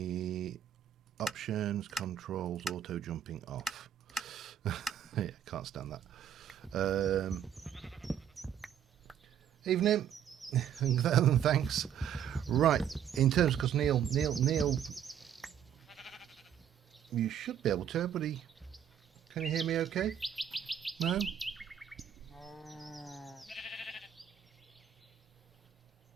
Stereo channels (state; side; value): quieter; left; 9.3 dB